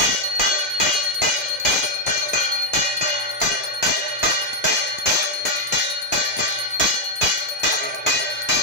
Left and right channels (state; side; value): normal; both; correlation 0.00